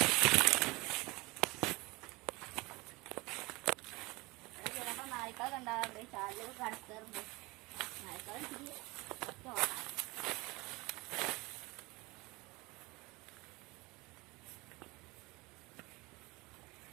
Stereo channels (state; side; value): quieter; left; 23.9 dB